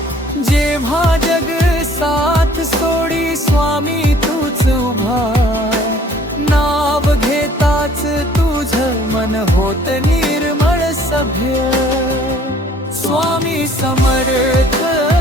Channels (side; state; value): both; normal; correlation 0.56